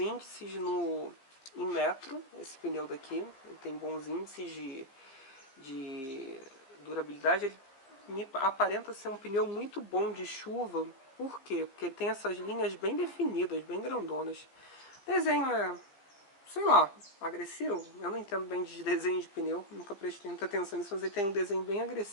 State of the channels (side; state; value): right; late; 15 ms